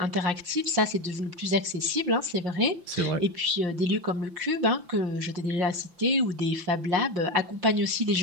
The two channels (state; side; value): late; left; 5.8 ms